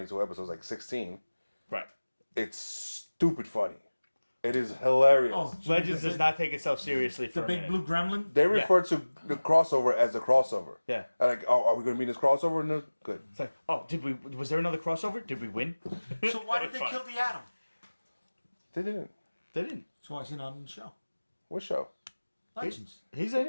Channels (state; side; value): inverted; both; correlation -1.00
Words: episodes, like 16. Right. It's stupid funny. It is hilarious. Oh, Legends does not take itself seriously for The a big minute. blue gremlin? They refer to the crossover as a crossover. Yeah. Like, oh, are we going to be in this crossover? No, good. It's like, oh, was there another crossover? Did we win? So why did they Fine. kill the Atom? They didn't. They didn't. So why is he not in the show? What show? Legends. He's in